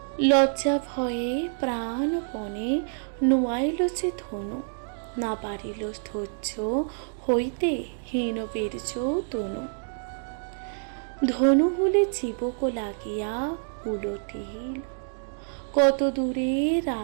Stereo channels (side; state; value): left; silent; digital silence